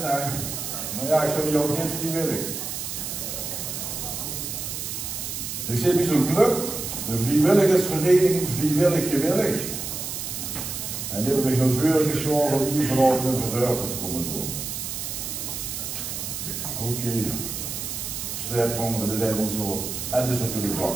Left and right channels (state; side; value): noise; right; hiss, 5 dB below the sound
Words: Maar ja, ik zou die ook niet vrijwillig. Ik zit bij zo'n club, de vrijwilligersvereniging Vrijwillig Gewillig. En die hebben me heel veel geschoven om hier vanavond een verhuipen te komen doen. Oké. Strijdhonger, dat zijn wel zo. En dat is natuurlijk bang.